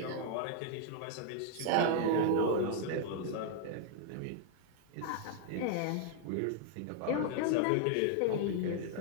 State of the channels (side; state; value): both; different; correlation 0.00